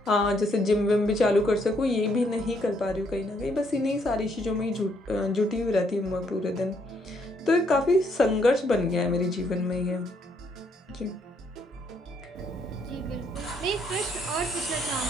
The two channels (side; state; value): both; normal; correlation 0.71